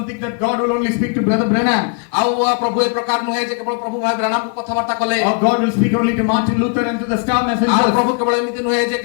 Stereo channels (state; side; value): quieter; right; 37.2 dB